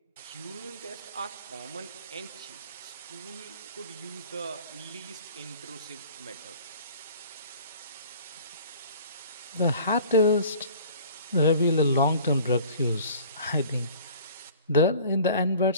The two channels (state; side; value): inverted; both; correlation -0.46